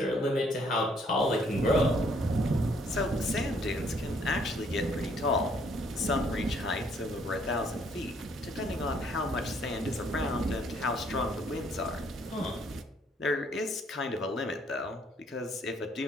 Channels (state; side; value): normal; both; correlation 0.65